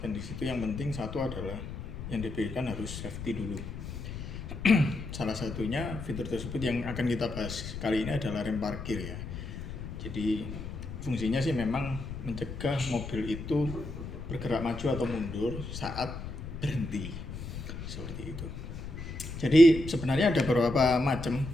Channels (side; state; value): left; noise; rumble, 8 dB below the sound